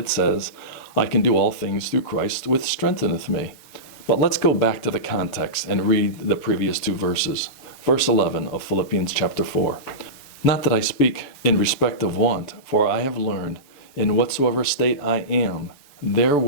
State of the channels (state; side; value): late; right; 7.0 ms